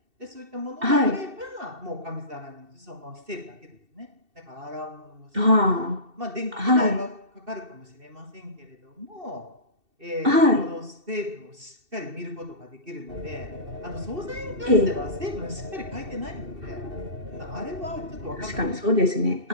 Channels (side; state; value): left; late; 2.7 ms